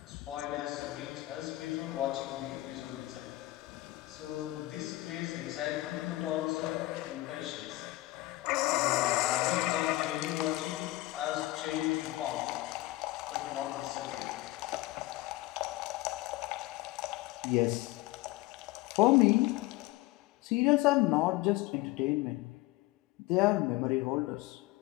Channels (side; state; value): right; quieter; 18.9 dB